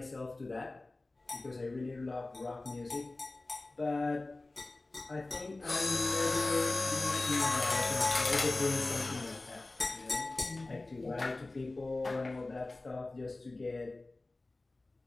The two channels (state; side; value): quieter; right; 3.0 dB